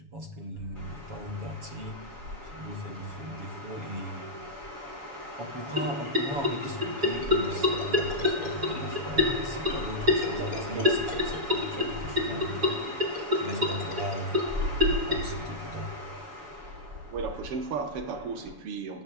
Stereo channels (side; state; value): left; late; 7.1 ms